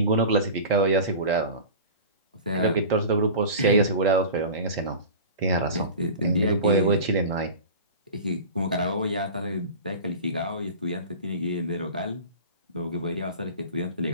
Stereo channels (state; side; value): inverted; both; correlation -0.35